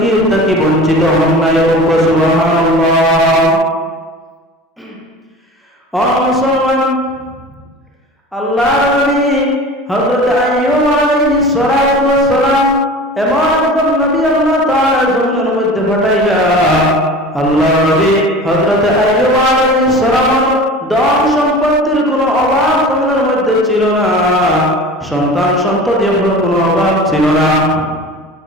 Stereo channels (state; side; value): normal; both; correlation 0.37